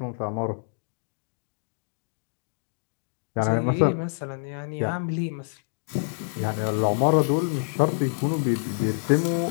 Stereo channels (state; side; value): silent; right; digital silence